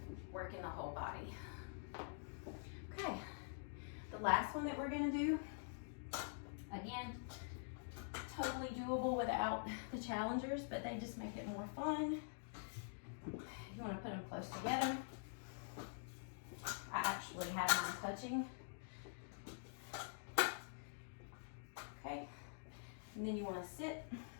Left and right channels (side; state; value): right; silent; digital silence